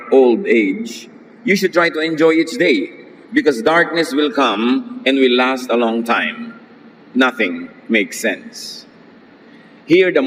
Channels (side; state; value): both; identical; correlation 1.00